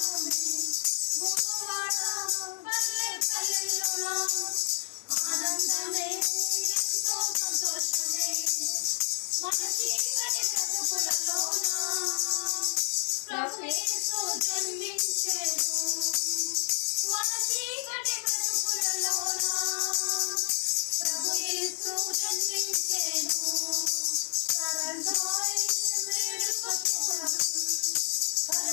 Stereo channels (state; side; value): silent; right; digital silence